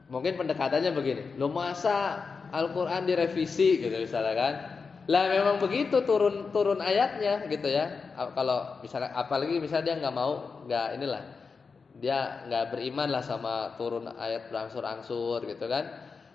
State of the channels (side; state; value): right; quieter; 4.9 dB